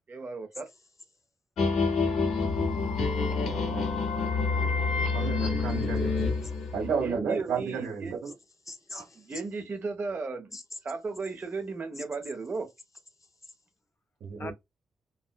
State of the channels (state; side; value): normal; both; correlation 0.67